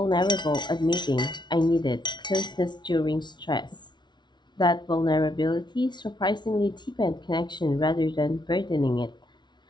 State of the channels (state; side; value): late; right; 0.21 ms